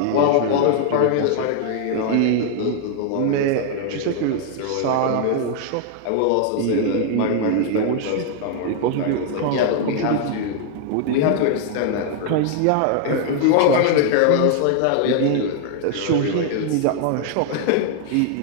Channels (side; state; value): both; different; correlation 0.00